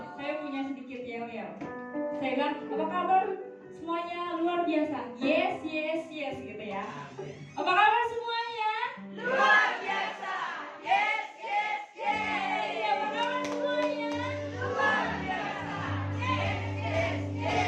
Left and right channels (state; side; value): identical; both; correlation 1.00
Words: Saya punya sedikit yel-yel. Saya bilang, apa kabar semuanya? Luar biasa. Yes, yes, yes gitu ya. Apa kabar semuanya? Luar biasa. Yes, yes, yes. Apa kabar semuanya? Luar biasa. Yes, yes,